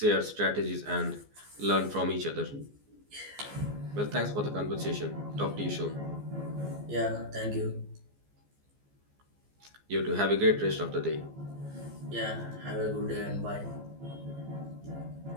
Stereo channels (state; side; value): late; left; 14 ms